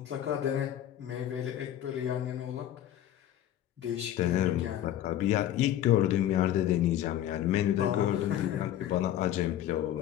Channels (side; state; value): right; quieter; 11.9 dB